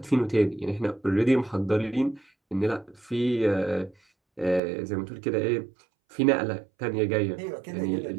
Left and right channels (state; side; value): drops out; left; at 4.6 s